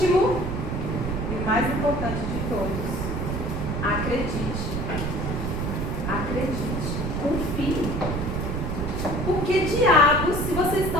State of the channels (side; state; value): right; noise; rumble, 2 dB below the sound